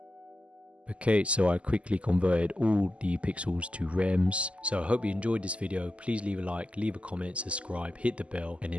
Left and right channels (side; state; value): left; late; 0.059 ms